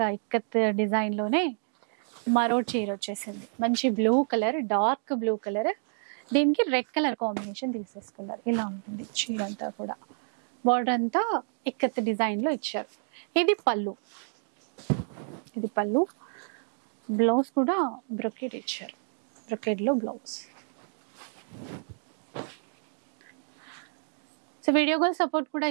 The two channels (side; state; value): left; silent; 58 dB below the other